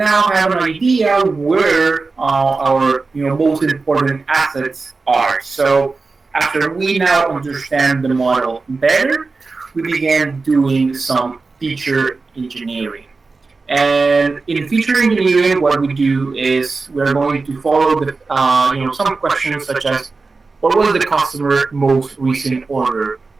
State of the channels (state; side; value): quieter; left; 4.0 dB